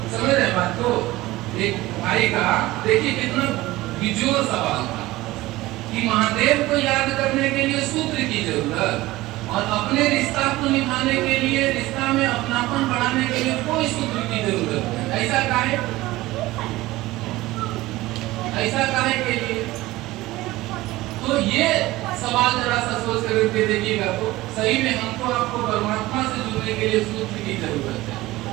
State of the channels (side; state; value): left; quieter; 18.3 dB